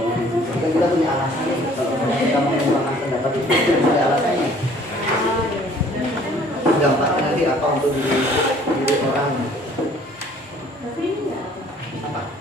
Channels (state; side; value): normal; both; correlation 0.55